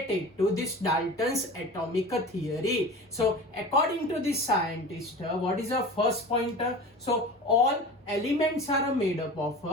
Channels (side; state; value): both; normal; correlation 0.35